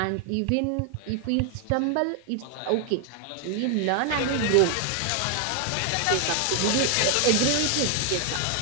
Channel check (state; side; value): different; both; correlation 0.00